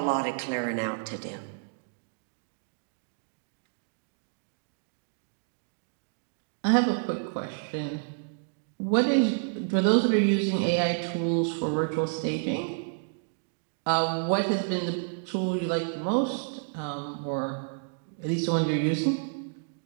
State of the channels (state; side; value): silent; left; digital silence